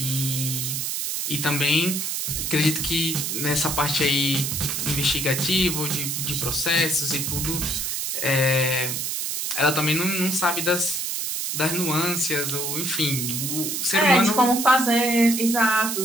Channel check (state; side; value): noise; right; hiss, 2 dB below the sound